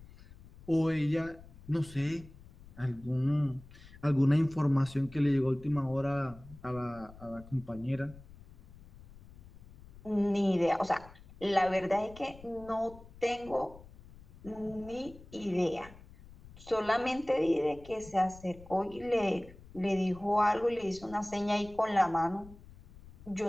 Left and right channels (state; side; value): noise; left; rumble, 20 dB below the sound